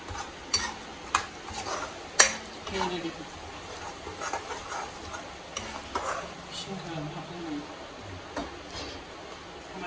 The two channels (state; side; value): identical; both; correlation 1.00